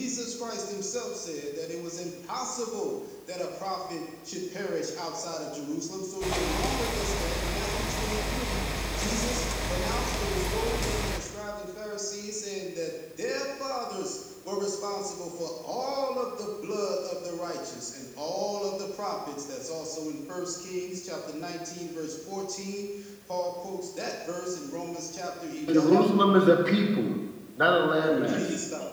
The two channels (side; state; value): both; identical; correlation 1.00